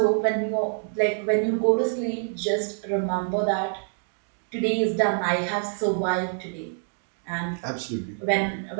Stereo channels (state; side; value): silent; left; digital silence